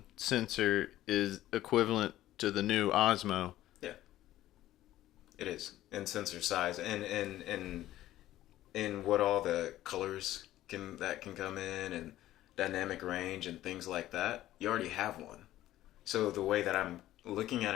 sensor is equivalent to the new Osmo? Yeah, it is in sensor size and what all the colors can come in and dynamic range and things like that. You already have one. So the way that I'm looking at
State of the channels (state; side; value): quieter; right; 14.4 dB